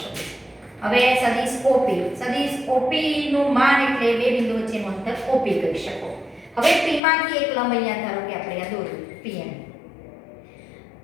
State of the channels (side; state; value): right; drops out; at 7.0 s